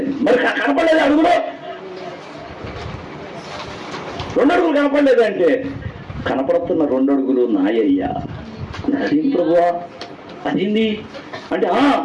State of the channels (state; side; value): identical; both; correlation 1.00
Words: మరి కనపడలేదు అడుగులో, 2 అడుగులు కనపడలేదంటే కనపడుతున్న 2 అడుగులు నాయ్యా. అదేం ప్రభువా, అదేంది అంటే